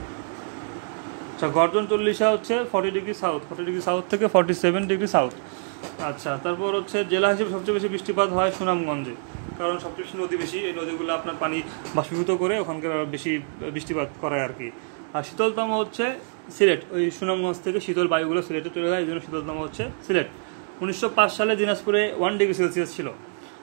আচ্ছা, গর্জন 40 হচ্ছে 40 ডিগ্রি সাউথ থেকে 47 ডিগ্রি সাউথ। আচ্ছা, তারপর হচ্ছে জেলা হিসেবে সবচেয়ে বেশি বৃষ্টিপাত হয় সুনামগঞ্জে, কারণ সবচেয়ে বেশি নদী বেশি, এই নদীগুলো আপনার পানি বাষ্পীভূত করে ওখানকার বেশি বৃষ্টিপাত করায় আর কি। আর শীতলতম হচ্ছে সিলেট, ওই সুনামগঞ্জ থেকে শীতল বায়ুগুলো সিলেটে চলে যায়, এই জন্য শীতলতম হচ্ছে সিলেট। 1905 সালে দিনাজপুরে 1 ডিগ্রি সেলসিয়াস ছিল।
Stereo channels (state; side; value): silent; left; digital silence